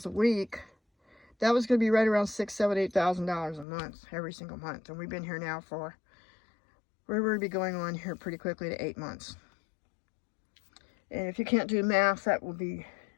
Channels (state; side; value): drops out; right; at 3.7 s